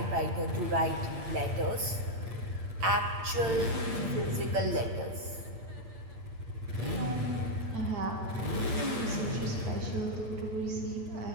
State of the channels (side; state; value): left; late; 9.0 ms